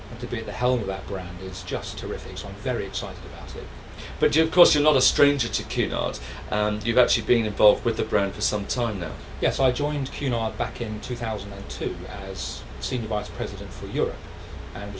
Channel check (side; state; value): both; identical; correlation 1.00